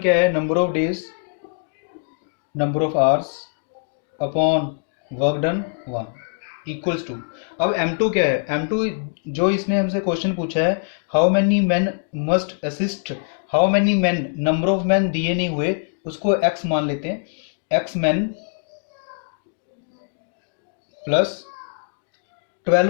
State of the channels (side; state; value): right; silent; digital silence